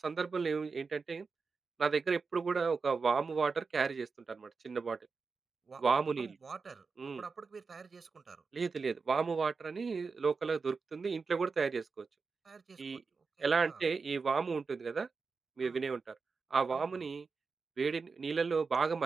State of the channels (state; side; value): quieter; left; 4.7 dB